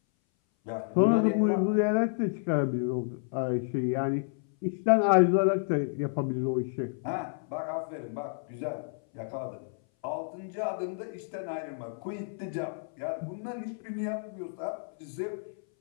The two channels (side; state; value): right; silent; 58 dB below the other